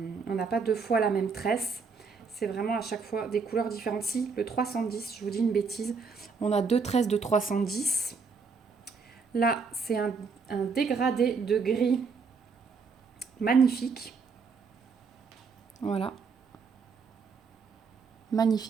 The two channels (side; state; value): left; quieter; 5.1 dB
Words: n'a pas deux fois la même tresse. C'est vraiment à chaque fois des couleurs différentes. Si, le 310, je vous dis une bêtise, on a deux tresses de 310. Là, c'est un dégradé de gris magnifique. Voilà.